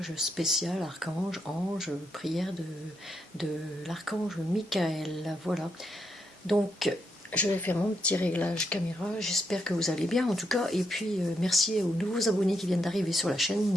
spécial archange, ange, prière de l'archange Michael. Voilà. Donc je vais faire mon petit réglage caméra, j'espère que vous allez bien en tout cas, et puis merci aux nouveaux abonnés qui viennent d'arriver sur la chaîne,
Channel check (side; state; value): both; normal; correlation 0.80